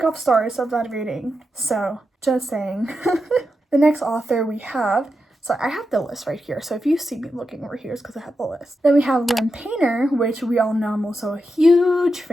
off stars of that reading. So, just saying. The next author we have, so I have the list right here. So if you see me looking over here, it's because I have the list. Then we have LYNN Painter, which we all know I'm also a huge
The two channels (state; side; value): normal; both; correlation 0.87